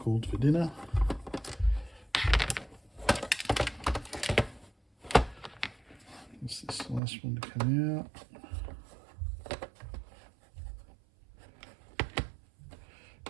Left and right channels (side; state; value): left; drops out; at 7.0 s